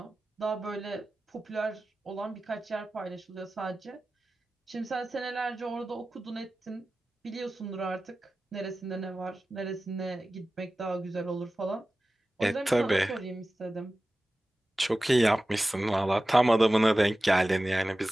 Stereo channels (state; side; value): normal; both; correlation 0.96